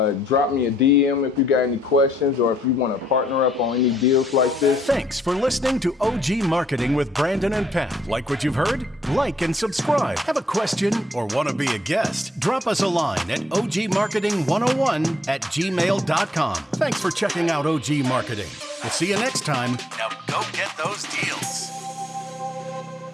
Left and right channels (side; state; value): both; normal; correlation 0.70